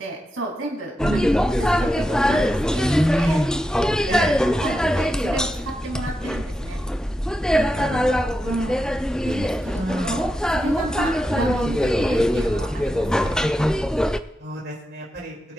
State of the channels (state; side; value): normal; both; correlation 0.88